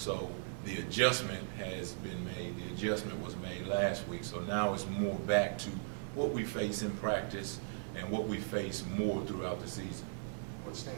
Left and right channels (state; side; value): silent; left; digital silence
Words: the adjustment has been made. The adjustment was made last week. So now it's more back to what we face in practice and what we face more throughout the season. What